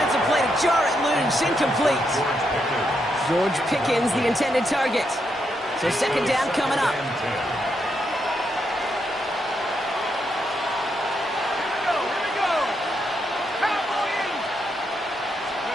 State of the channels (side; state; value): both; normal; correlation 0.80